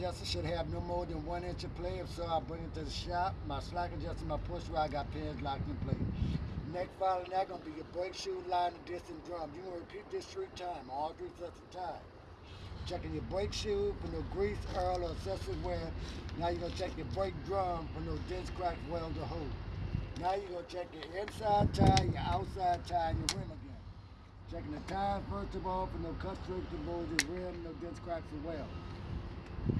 should have no more than 1 inch of play. If so, I bring it to the shop. My slack adjuster, my push rod got pins locked in place. Next following that gonna be your brake shoe, liner, disc, and drum. You're gonna repeat this 3 times, all 3 sets of time. Checking your brake shoe for no grease, oil, or excessive wear. Now you're gonna check your brake drum for no dents, cracks, welds, or holes. Now you're gonna check your inside tire, your outside tire, and your rim again. Checking the tires first of all for no cut, scrapes, and bulges, rim, no dents, cracks, or welds.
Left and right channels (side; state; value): both; identical; correlation 1.00